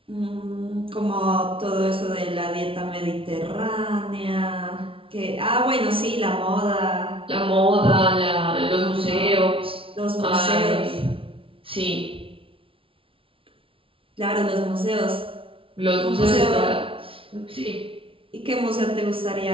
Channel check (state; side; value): late; left; 0.26 ms